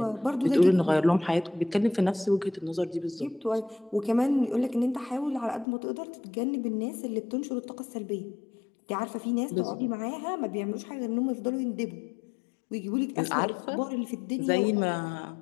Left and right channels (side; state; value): right; drops out; at 5.7 s